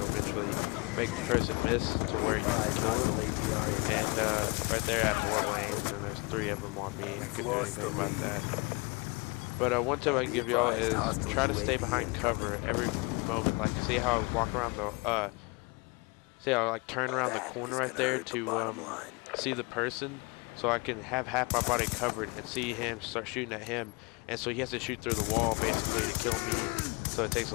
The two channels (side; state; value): right; quieter; 28.0 dB